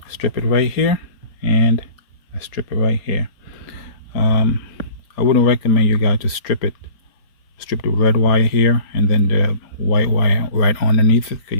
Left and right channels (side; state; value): right; late; 4.3 ms